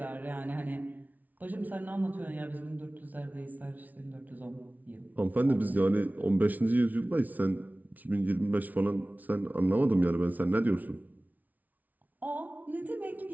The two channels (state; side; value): late; left; 0.077 ms